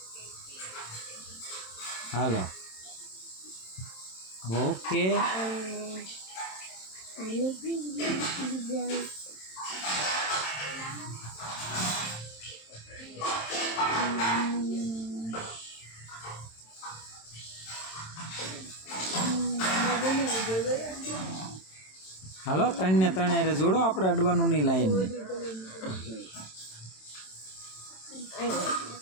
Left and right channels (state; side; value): late; right; 27 ms